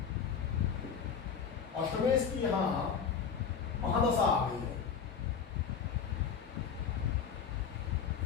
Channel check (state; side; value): quieter; right; 6.7 dB